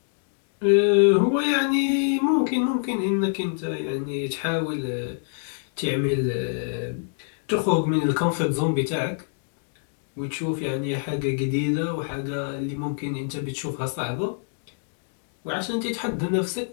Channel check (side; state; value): right; silent; digital silence